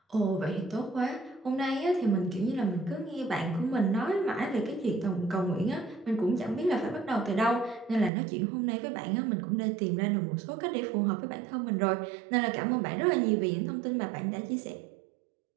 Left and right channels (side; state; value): left; drops out; at 8.1 s